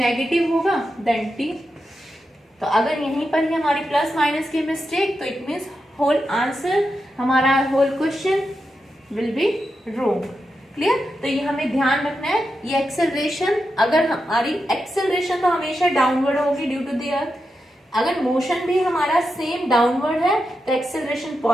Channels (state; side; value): normal; both; correlation 0.88